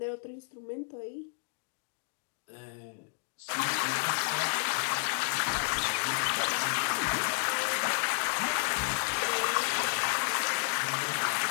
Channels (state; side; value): silent; right; digital silence